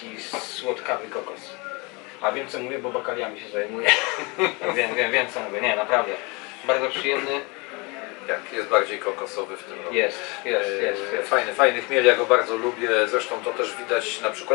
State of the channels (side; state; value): right; quieter; 28.2 dB